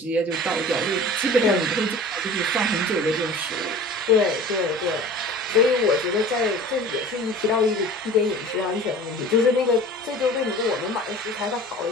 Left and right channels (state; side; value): normal; both; correlation 0.41